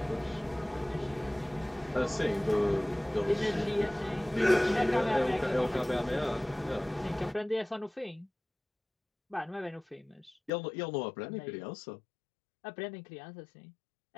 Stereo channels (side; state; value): right; drops out; at 10.5 s